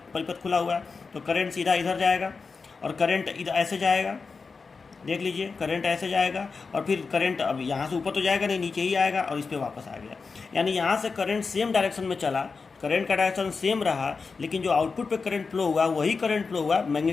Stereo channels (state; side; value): quieter; right; 4.7 dB